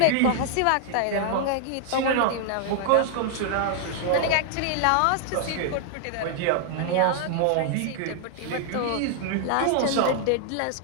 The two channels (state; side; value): different; both; correlation -0.01